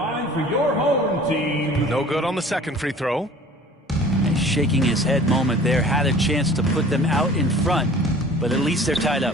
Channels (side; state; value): both; normal; correlation 0.47